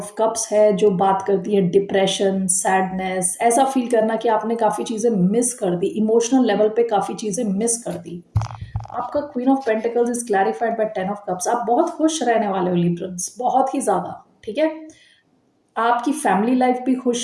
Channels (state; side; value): identical; both; correlation 1.00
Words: कप्स है, जो बात करती है डिप्रेशन, सैडनेस, ऐसा फील करना कि आपने काफ़ी चीज़ें मिस कर दी, इमोशनल लेवल पे काफ़ी चीज़ें मिस कर दी। आपका queen of pentacles is clarified by 10 of cups. आप बहुत खुश रहने वाले हो लिब्रंस, बहुत ही ज़्यादा। ठीक है, आपकी फैमिली लाइफ भी